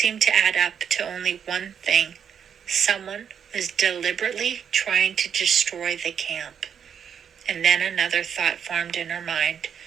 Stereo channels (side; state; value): left; quieter; 7.8 dB